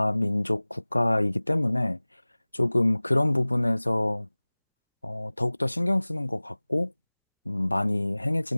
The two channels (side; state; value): both; inverted; correlation -1.00